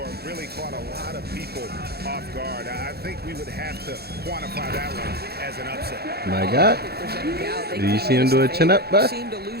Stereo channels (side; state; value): left; late; 0.46 ms